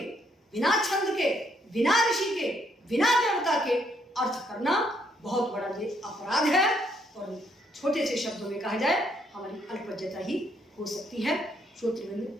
बिना छंद के, बिना ऋषि के, बिना देवता के अर्थ करना बहुत बड़ा ये अपराध है। और छोटे से शब्दों में कहा जाए, हमारी अल्पज्ञता ही हो सकती है। श्रोतृवृंद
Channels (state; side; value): normal; both; correlation 0.72